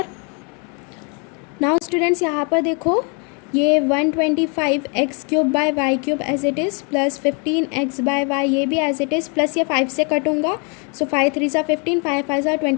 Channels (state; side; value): quieter; right; 35.4 dB